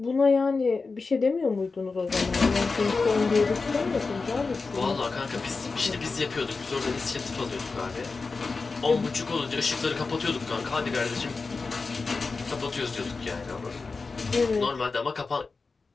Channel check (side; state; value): right; quieter; 4.2 dB